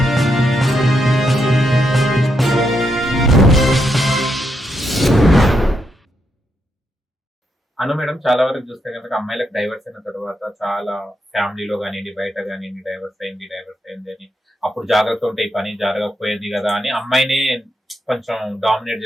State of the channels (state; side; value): normal; both; correlation 0.81